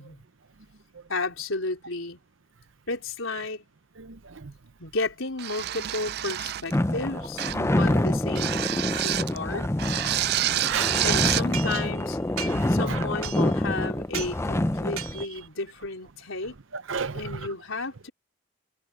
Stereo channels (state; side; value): normal; both; correlation 0.46